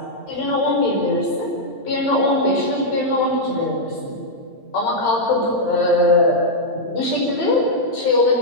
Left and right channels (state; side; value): late; right; 8.7 ms